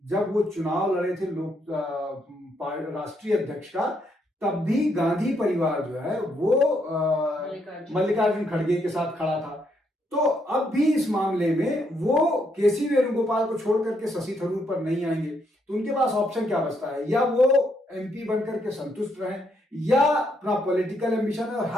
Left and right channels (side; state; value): both; normal; correlation 0.75